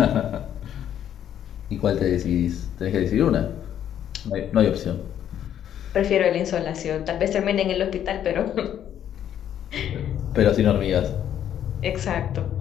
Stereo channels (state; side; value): quieter; right; 10.2 dB